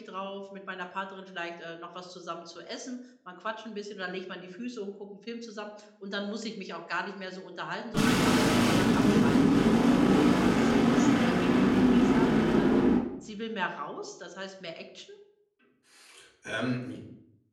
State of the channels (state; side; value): identical; both; correlation 1.00